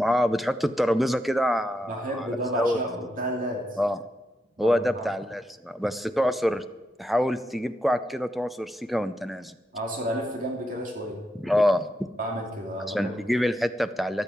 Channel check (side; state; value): both; normal; correlation 0.83